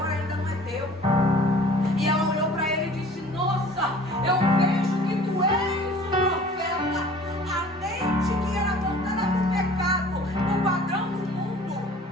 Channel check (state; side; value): normal; both; correlation 0.48